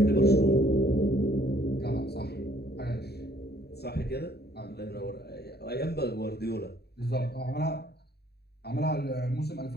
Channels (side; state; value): right; late; 0.47 ms